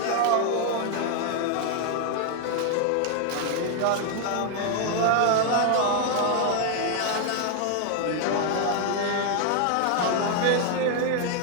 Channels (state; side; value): different; both; correlation 0.00